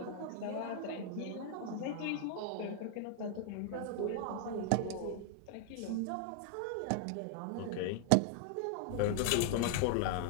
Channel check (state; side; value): different; both; correlation 0.00